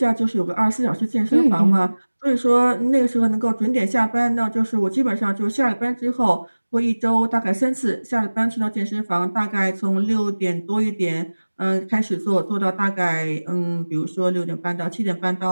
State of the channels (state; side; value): inverted; both; correlation -1.00